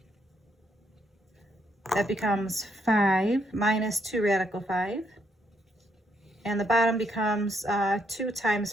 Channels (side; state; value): both; normal; correlation 0.74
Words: that becomes 5 minus 2 radical 5. And the bottom becomes 2 times